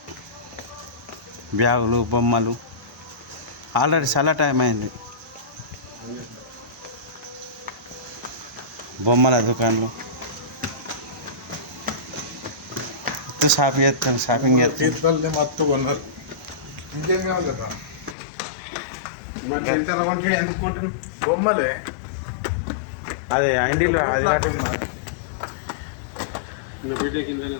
బ్యాగులు బొమ్మలు ఆల్రెడీ చాలా టైం అయింది. బొమ్మల దుకాణాలు షాపింగ్ చేస్తాను. తీర్థాలనే మత్తు కొన్నారు. ఇంకేం కావాలి కదా బొమ్మలే. అదే ఇండిలో అది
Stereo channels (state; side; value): drops out; right; at 18.2 s